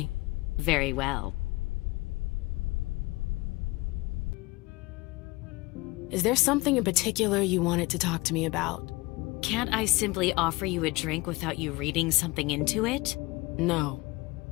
Very well. Is there something in particular you wanted to talk to me about? Can't I simply offer you a drink without you reading something into it? No.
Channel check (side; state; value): right; quieter; 22.5 dB